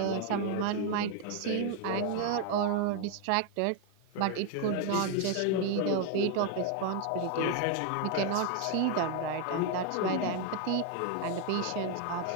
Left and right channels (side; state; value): both; different; correlation 0.01